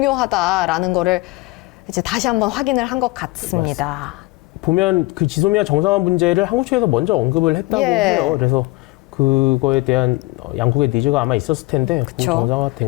거를 이제 다시 한번 확인을 한 것 같습니다. 보면 그 지소미아 정상화 문제를 한국 측에서 먼저 언급을 했다고 해요. 그래서 그거에 대한 양국의 니즈가 아마 있었을 텐데 정상화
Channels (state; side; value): quieter; right; 22.2 dB